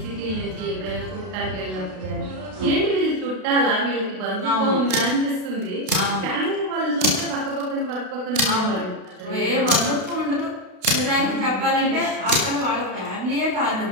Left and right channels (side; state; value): left; late; 32 ms